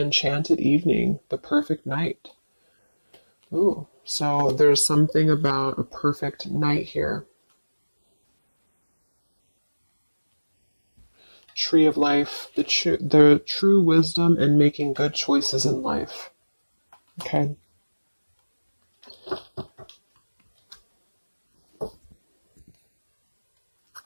evening, the perfect night. Ooh, so there's something about a perfect night here. Tree of Life, the true wisdom and making good choices in life. Okay.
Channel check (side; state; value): both; inverted; correlation -1.00